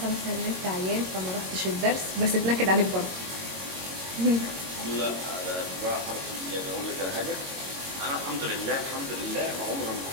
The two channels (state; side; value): late; left; 22 ms